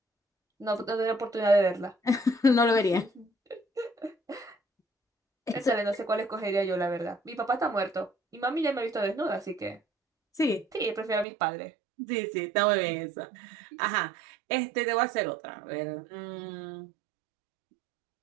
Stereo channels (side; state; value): left; drops out; at 11.2 s